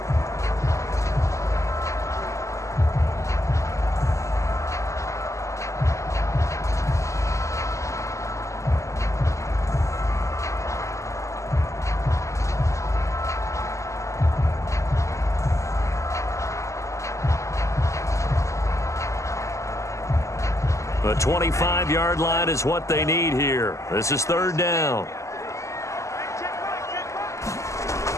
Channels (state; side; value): late; right; 0.15 ms